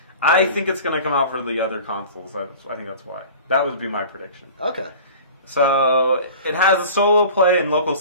I think it's going to come out for the other consoles. I think that's why. That would be my prediction. Okay. So it has a solo play and local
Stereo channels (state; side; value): inverted; both; correlation -0.40